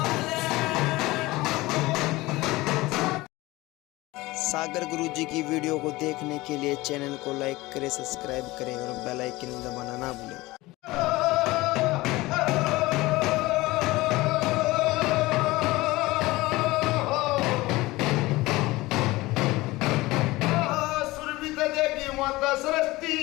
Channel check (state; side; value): quieter; right; 20.0 dB